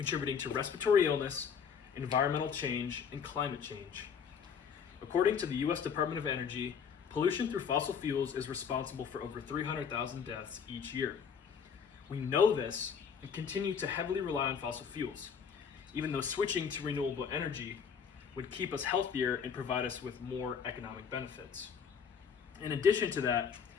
to respiratory illness, environmental change, and climate change. According to the U.S. Department of Energy, pollution through fossil fuels is responsible for over 300,000 deaths each year. We know this and continue to heavily rely on fossil fuels, even though switching to renewable energy would keep us healthier and provide us with more economic benefits. In addition to that,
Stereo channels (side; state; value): right; quieter; 6.9 dB